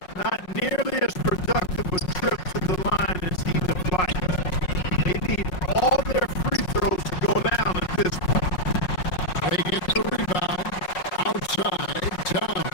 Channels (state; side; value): late; right; 5.5 ms